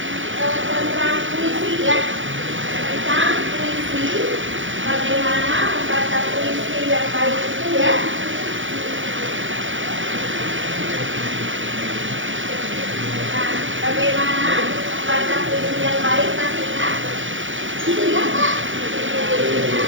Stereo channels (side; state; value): left; late; 0.56 ms